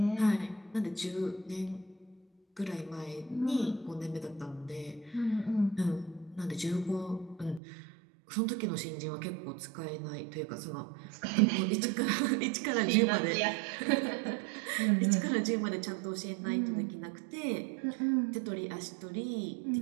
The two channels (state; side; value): drops out; left; at 7.6 s